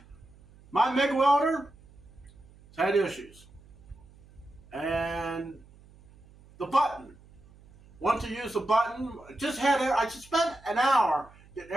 My MIG welder has had issues. And the button. Want to use the button. I just spent an hour getting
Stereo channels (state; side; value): noise; right; hum, 25 dB below the sound